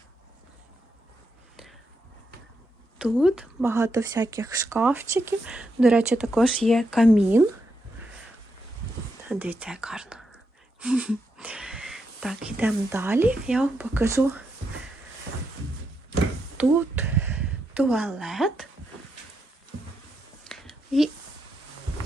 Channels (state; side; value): normal; both; correlation 0.82